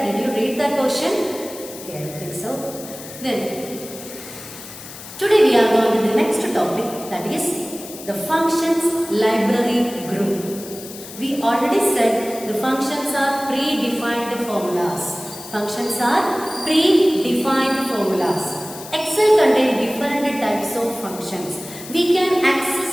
Did you read that question? Okay, I think so. Then today we are going to the next topic, that is the functions library group. We already said the functions are predefined formulas. Functions are predefined formulas. Excel contains different types of functions. We can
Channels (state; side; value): noise; left; hiss, 14 dB below the sound